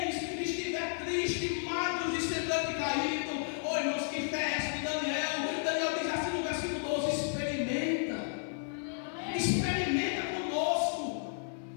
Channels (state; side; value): silent; right; 56 dB below the other